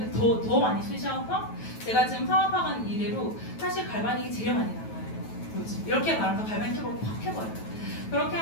더 많이 쓰셔서 제가 지금 사업하는 이래로 사실 갈바닉이 제일 많이 나와요. 이렇게 말하면서 갈바닉 캡을 확 해버려요. 그렇게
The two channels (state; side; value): late; right; 9.2 ms